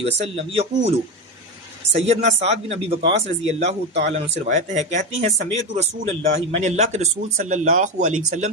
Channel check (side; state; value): both; normal; correlation 0.15